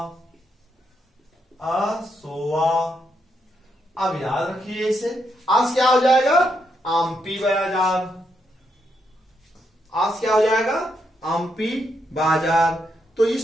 असोवा। अब याद रखिए इसे, आज क्या हो जाएगा, आमपी बाजार, आज क्या हो जाएगा, आमपी बाजार। तो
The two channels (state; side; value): normal; both; correlation 0.79